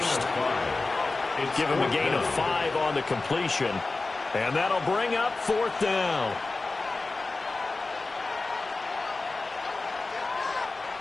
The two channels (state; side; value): quieter; right; 3.5 dB